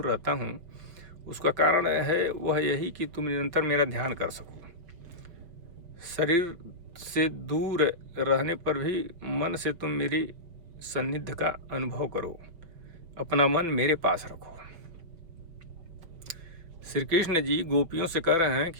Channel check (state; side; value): late; left; 5.6 ms